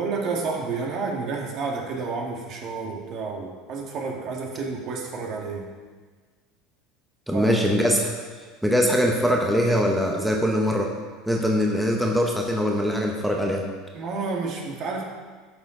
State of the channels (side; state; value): both; normal; correlation 0.66